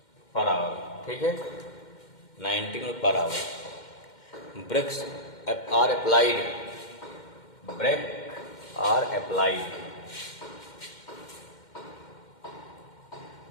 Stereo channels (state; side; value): late; right; 2.1 ms